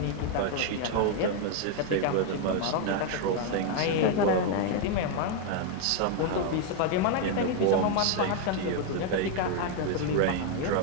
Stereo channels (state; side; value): different; both; correlation 0.01